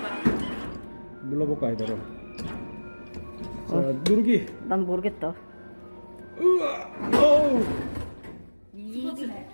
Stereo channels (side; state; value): both; inverted; correlation -1.00